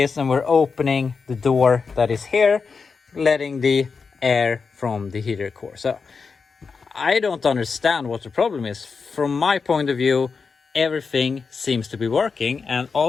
and we're opening the door that is here, letting the air from the heater core. So I don't understand what the problem is. From my point of view, everything seems to be working. And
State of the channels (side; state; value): right; quieter; 5.1 dB